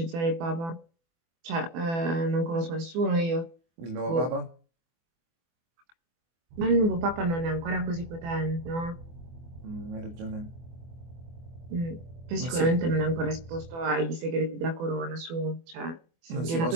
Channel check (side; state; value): left; late; 24 ms